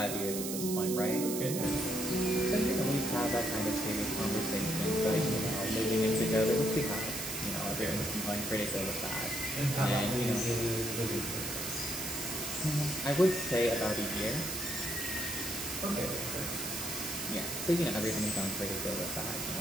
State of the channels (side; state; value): right; noise; hiss, 4 dB below the sound